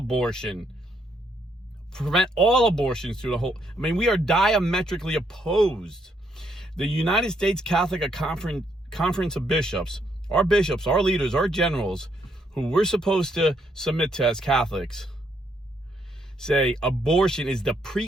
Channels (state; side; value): normal; both; correlation 0.74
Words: Prevent all abortions through the whole. I mean, we are diametrically opposed. The United States Catholic Conference of Bishops, our leaders, our generals, who we're supposed to submit to as Catholics, say abortion is the